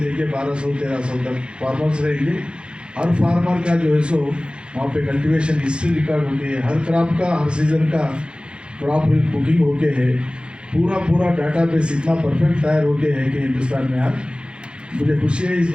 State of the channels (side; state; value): left; late; 0.054 ms